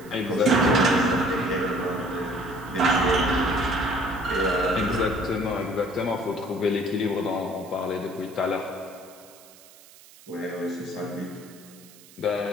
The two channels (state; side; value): noise; right; hiss, 23 dB below the sound